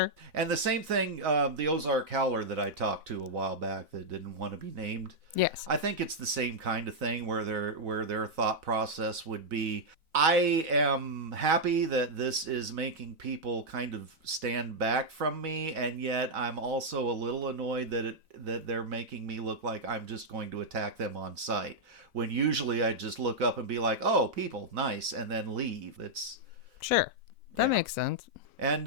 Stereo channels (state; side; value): late; left; 4.0 ms